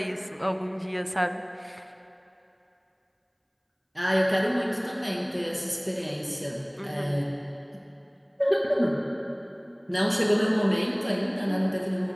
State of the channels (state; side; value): identical; both; correlation 1.00